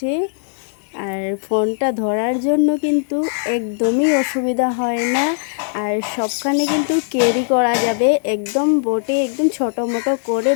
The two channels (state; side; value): silent; right; digital silence